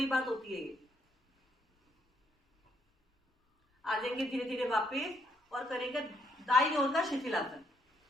बात होती है ये। आ जाएंगे धीरे धीरे वापस और करेंगे दाईं ओर का शिथिलासन।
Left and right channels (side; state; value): both; normal; correlation 0.72